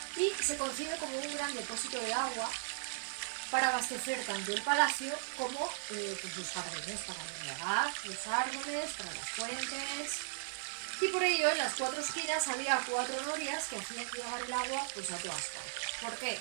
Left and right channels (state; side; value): silent; left; 53 dB below the other